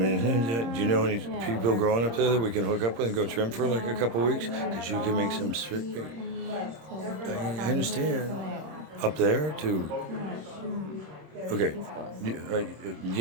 do you know any people growing up there that we can hook up with and go trim for like a couple weeks? Because you can make some sweet. I understand. Up there too. Okay.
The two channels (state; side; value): late; left; 26 ms